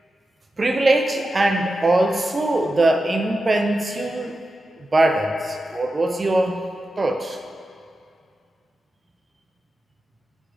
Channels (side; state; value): both; normal; correlation 0.91